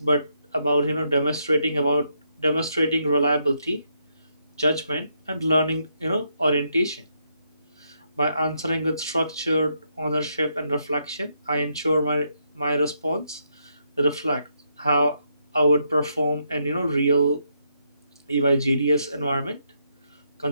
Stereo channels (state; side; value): inverted; both; correlation -0.78